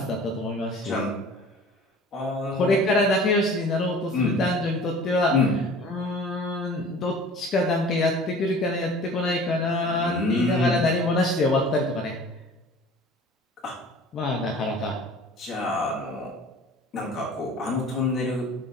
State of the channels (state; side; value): normal; both; correlation 0.45